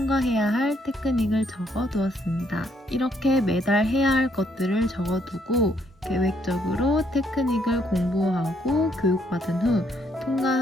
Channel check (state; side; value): normal; both; correlation 0.71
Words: 할 테크닉을 적어두었습니다. 이렇게 매달 해야 할 것들을 적어두고 계획적으로 테크닉을 공부하고 교육받은 후